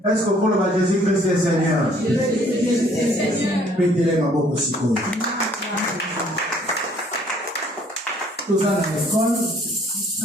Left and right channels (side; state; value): both; normal; correlation 0.60